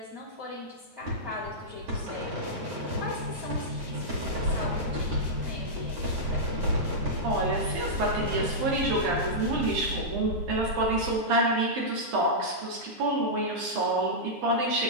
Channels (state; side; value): late; left; 9.5 ms